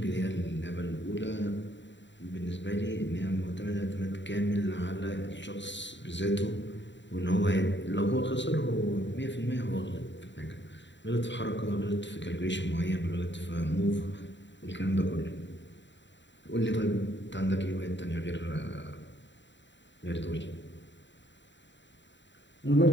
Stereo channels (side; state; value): right; late; 0.53 ms